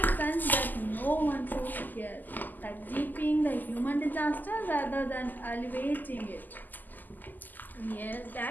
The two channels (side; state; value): right; late; 0.085 ms